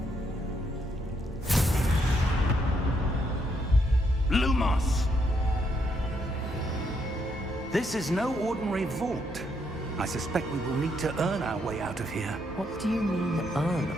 Lumos! This is no ordinary vault. I suspect we will need to earn our way out of here. What do you mean, earn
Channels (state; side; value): normal; both; correlation 0.75